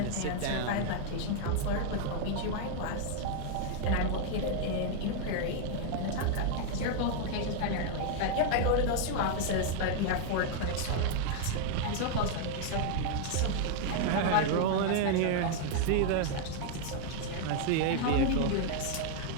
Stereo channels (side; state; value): both; different; correlation 0.00